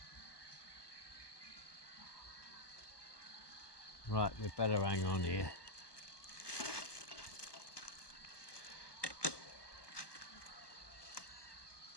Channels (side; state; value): right; late; 1.2 ms